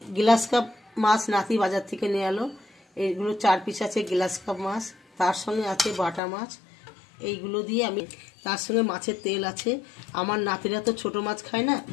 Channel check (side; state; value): right; drops out; at 6.2 s